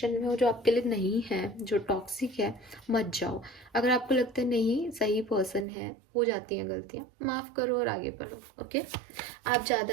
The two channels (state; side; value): drops out; left; at 5.7 s